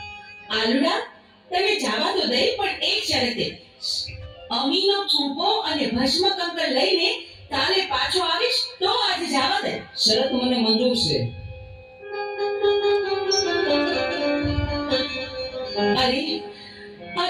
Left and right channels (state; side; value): identical; both; correlation 1.00